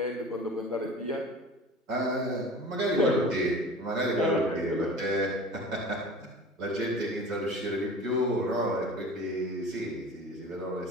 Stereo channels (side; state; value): both; normal; correlation 0.40